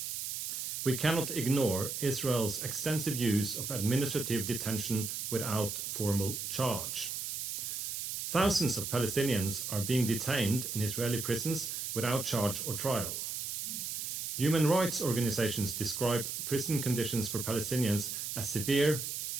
we cannot ignore Israel's extensive use of administrative detention without formal charge. Thousands of Palestinians are being detained in Israeli prisons without charge or trial. Human rights organizations describe prison conditions for Palestinians as severe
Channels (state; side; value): noise; right; hiss, 4 dB below the sound